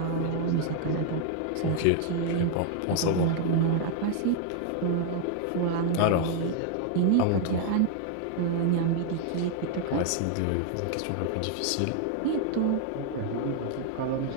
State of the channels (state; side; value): different; both; correlation 0.00